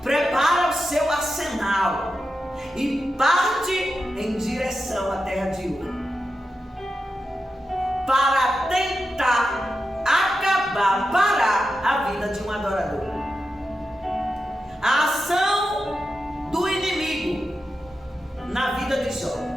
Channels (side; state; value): both; normal; correlation 0.89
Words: prepara o seu arsenal e parte em direção à terra de Ur, para tentar acabar, parar a vida de um adorador. A ação do inimigo na vida de Jó,